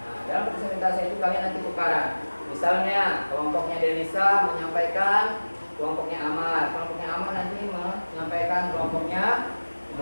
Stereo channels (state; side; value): inverted; both; correlation -1.00